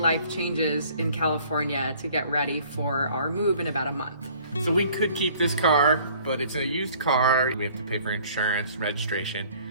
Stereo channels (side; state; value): both; inverted; correlation -0.54